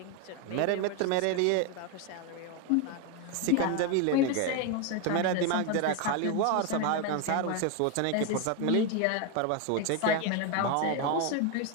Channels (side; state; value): both; different; correlation 0.02